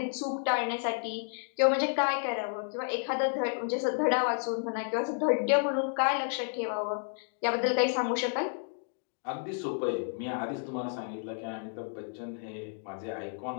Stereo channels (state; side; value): silent; right; 57 dB below the other